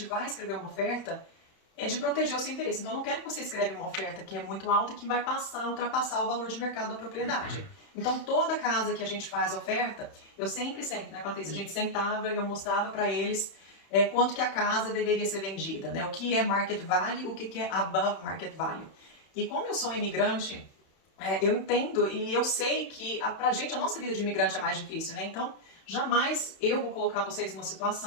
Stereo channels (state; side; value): late; right; 31 ms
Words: vai escrever uma oferta, é de proteger o seu interesse. Então, eu não quero que você escreva uma oferta que é muito alta e que vai ultrapassar o valor de mercado da propriedade. Então, toda casa que a gente faz oferta, eu sempre, né, Patrícia, a gente sentava e eu mostrava para eles quanto que a casa deveria ser vendida, né? O que é market value, o que é above market value. E como eu sou imigrante, eu entendo e eu sei que pra gente a nossa vida de imigrante é mais difícil, né? Então, jamais eu vou colocar vocês numa